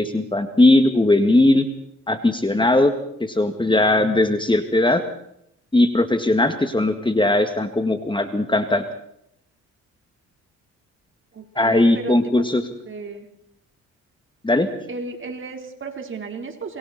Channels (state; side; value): normal; both; correlation 0.73